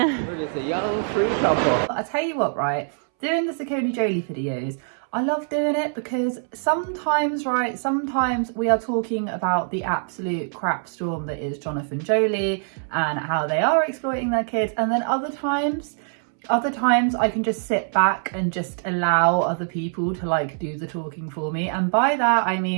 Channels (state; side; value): silent; left; 63 dB below the other